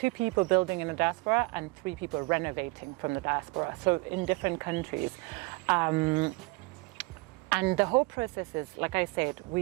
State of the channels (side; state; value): left; quieter; 25.3 dB